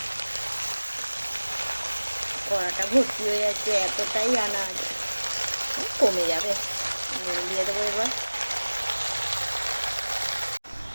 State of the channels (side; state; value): both; inverted; correlation -1.00